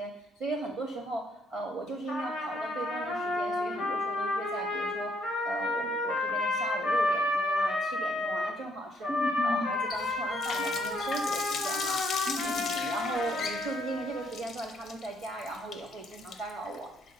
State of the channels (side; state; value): both; normal; correlation 0.70